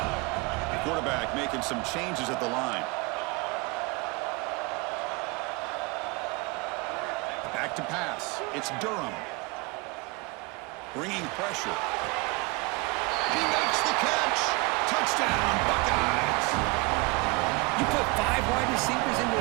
Quarterback making some changes at the line. Back to pass. It's Durham. Bringing pressure. He makes the catch. Touchdown, Buckeyes. You put 5 wide receivers into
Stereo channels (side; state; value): left; quieter; 26.8 dB